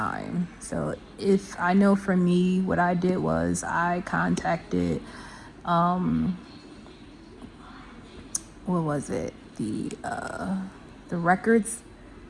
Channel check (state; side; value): identical; both; correlation 1.00